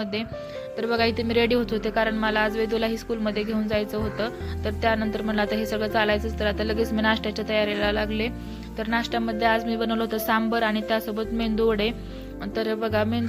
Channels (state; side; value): identical; both; correlation 1.00